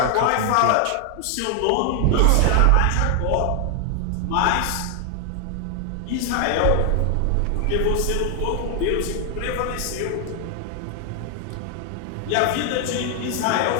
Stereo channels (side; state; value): both; different; correlation 0.00